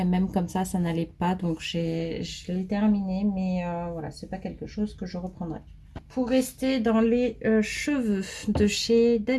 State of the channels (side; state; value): both; identical; correlation 1.00